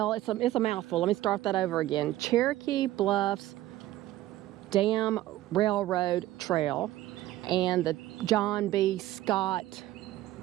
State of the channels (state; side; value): quieter; left; 15.4 dB